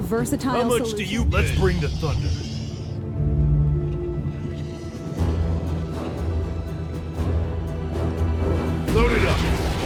versatile How much solution. do you Let's bring the thunder. Load it up.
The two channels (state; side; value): identical; both; correlation 1.00